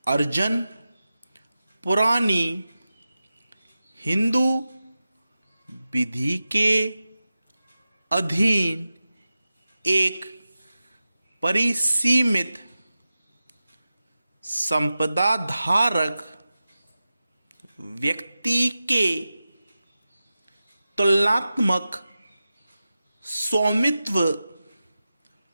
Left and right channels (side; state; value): both; inverted; correlation -0.94